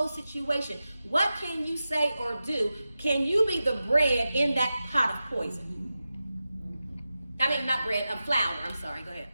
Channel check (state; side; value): inverted; both; correlation -0.93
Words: situation, what can you say or do? Can you be the bread in that pot of poison? I mean, not bread, flour. I'm sorry. Go ahead.